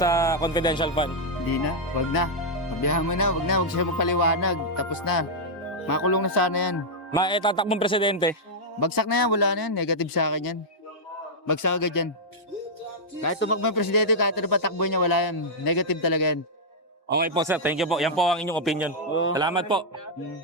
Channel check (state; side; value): normal; both; correlation -0.05